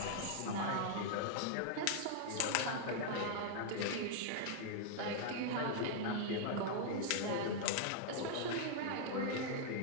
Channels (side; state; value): both; different; correlation -0.01